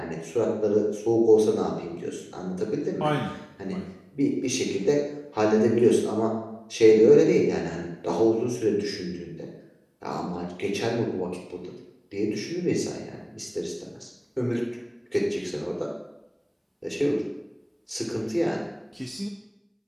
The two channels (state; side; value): identical; both; correlation 1.00